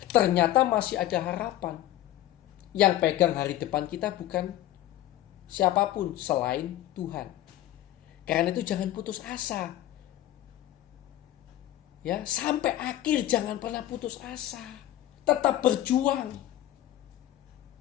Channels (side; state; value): right; quieter; 13.5 dB